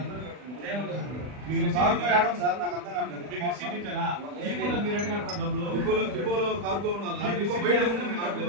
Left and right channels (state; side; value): late; left; 40 ms